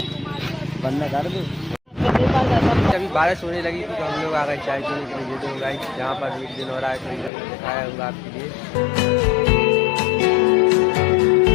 बंदा कर दो। अभी बारिश होने लगी थी तो हम लोग आ गए चाय पीने के लिए। ये दो गाइस, जहाँ पर एक दिन हो रहा है तो दिखाया होगा आपके लिए।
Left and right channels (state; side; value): drops out; right; at 7.3 s